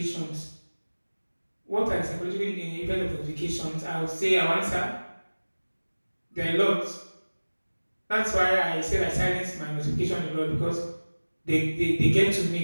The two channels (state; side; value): inverted; both; correlation -1.00